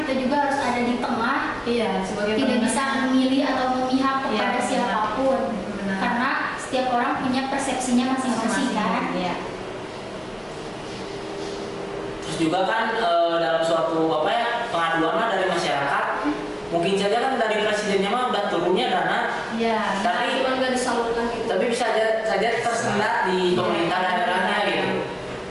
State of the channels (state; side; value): identical; both; correlation 1.00